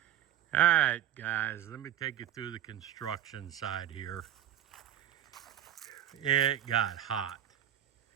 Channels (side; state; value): left; quieter; 11.5 dB